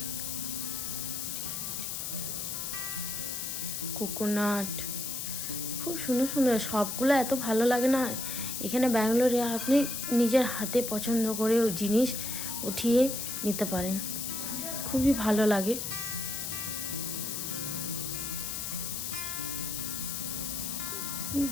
কোকোনাট। খুব সুন্দর সুন্দর, সবগুলো এত ভালো লাগে না। এখানে ব্যাঙ্গালোরে আপনি নিজের হাতে পছন্দ করে জিনিস উঠিয়ে নিতে পারেন, খুবই ভালো লাগে।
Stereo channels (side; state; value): left; noise; hiss, 4 dB below the sound